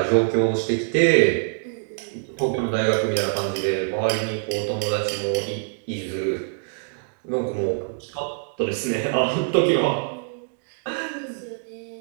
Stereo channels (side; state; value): left; silent; digital silence